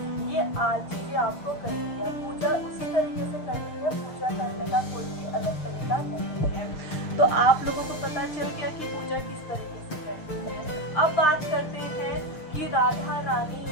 ये आज चीजें आपको करनी है। पूजा उसी तरीके से करनी है, पूजा करने का कोई भी अलग तरीका नहीं है। तो आप लोगों को पता चल गया कि पूजा किस तरीके से करनी है। अब बात करते हैं कि राधा रानी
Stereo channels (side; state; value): right; late; 6.6 ms